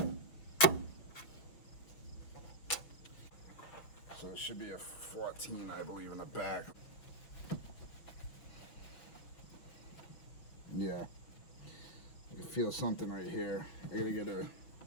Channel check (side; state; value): right; late; 6.2 ms